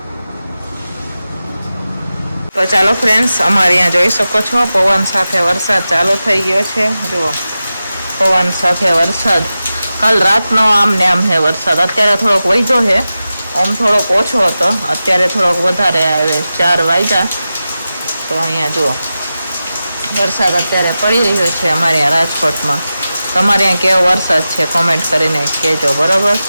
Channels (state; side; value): inverted; both; correlation -0.93